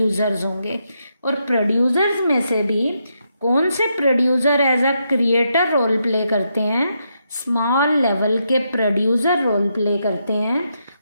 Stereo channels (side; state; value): both; inverted; correlation -0.81